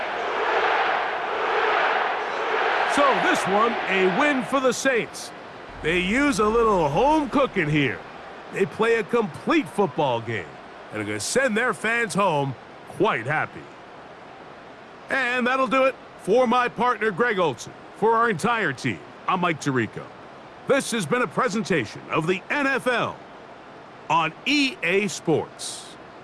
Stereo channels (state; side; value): identical; both; correlation 1.00